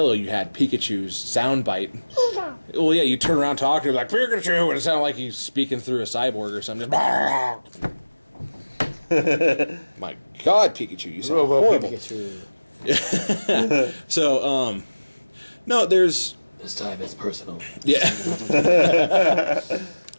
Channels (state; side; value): inverted; both; correlation -1.00